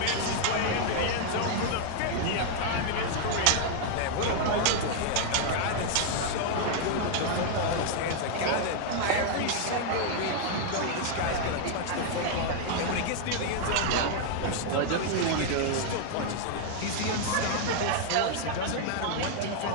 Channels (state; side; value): different; both; correlation 0.00